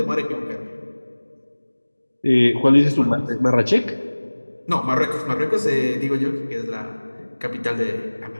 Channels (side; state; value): both; inverted; correlation -1.00